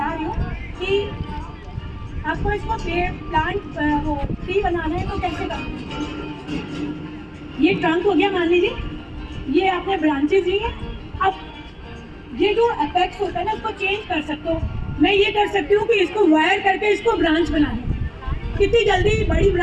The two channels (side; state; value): both; identical; correlation 1.00